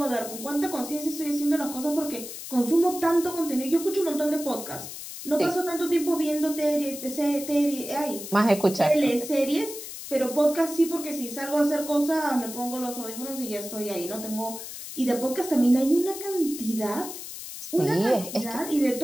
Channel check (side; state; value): left; noise; hiss, 10 dB below the sound